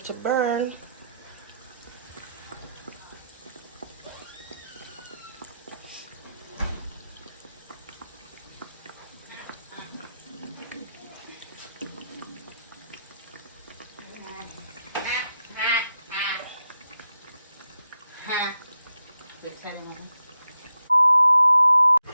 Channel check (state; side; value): inverted; both; correlation -0.84